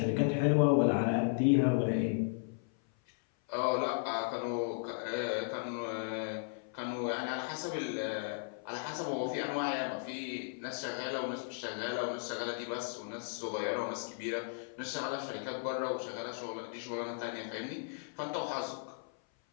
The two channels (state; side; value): silent; right; 54 dB below the other